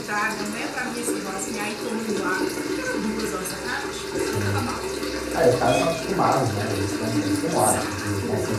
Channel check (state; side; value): identical; both; correlation 1.00